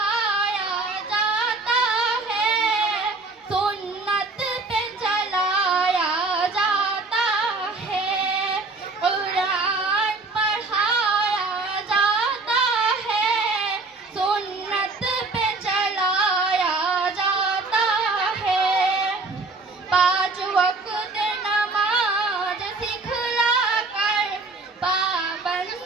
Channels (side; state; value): left; quieter; 3.6 dB